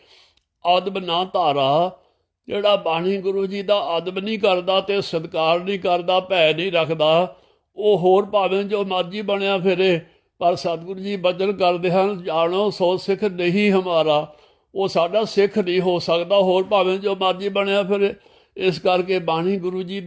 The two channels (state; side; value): identical; both; correlation 1.00